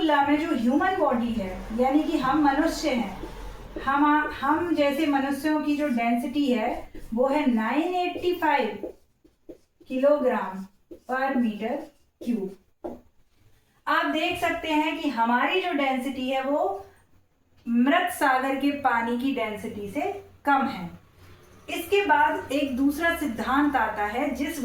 में जो ह्यूमन बॉडी है, यानी कि हम मनुष्य हैं, हम जैसे मनुष्यों की जो डेंसिटी है वो है 985 किलोग्राम पर मीटर क्यूब। आप देख सकते हैं कि हमारी जो डेंसिटी है वो मृत सागर के पानी की डेंसिटी से कम है। इसके बाद एक दूसरा सिद्धांत आता है जिस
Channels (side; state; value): both; identical; correlation 1.00